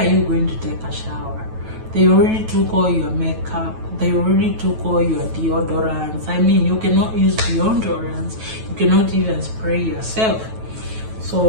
you going to take a shower? They already took all your makeup. They already took all your deodorants. I mean, you cannot use deodorants. You cannot even spray yourself.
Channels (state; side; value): late; left; 9.2 ms